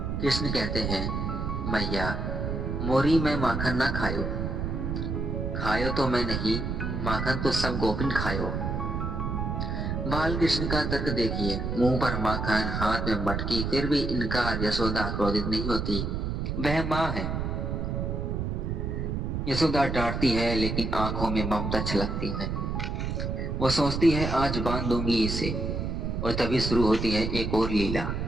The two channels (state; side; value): noise; right; rumble, 2 dB below the sound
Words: कृष्ण कहते हैं, मैया मोरी में माखन ना खायो तो मैं नहीं, माखन तो सब गोपिन खायो। बाल कृष्ण का तर्क देखिए, मुंह पर माखन, हाथ में मटकी, फिर भी इनकार। यशोदा क्रोधित नहीं होती, वह मां है। यशोदा डांटती है, लेकिन आंखों में ममता छलकती है। वो सोचती है, आज बांध दूंगी इसे। और तभी शुरू होती है एक और लीला।